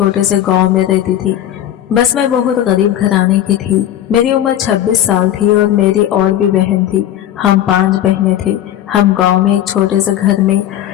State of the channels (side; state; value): right; quieter; 11.7 dB